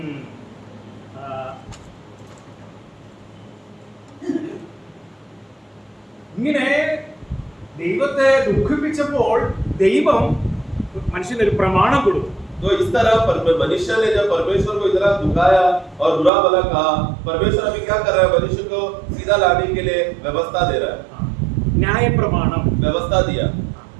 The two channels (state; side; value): drops out; left; at 16.3 s